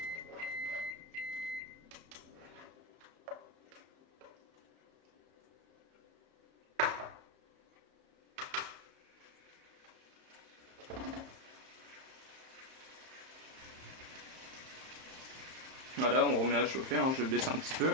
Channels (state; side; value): late; left; 31 ms